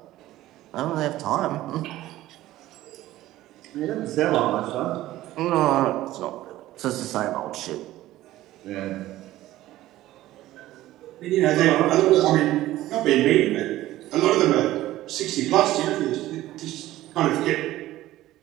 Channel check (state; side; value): quieter; left; 15.4 dB